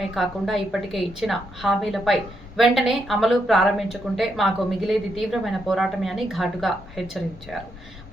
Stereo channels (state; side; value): normal; both; correlation 0.80